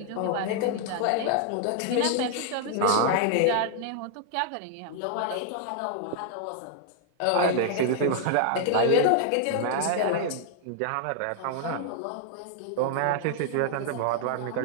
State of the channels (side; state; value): both; different; correlation -0.01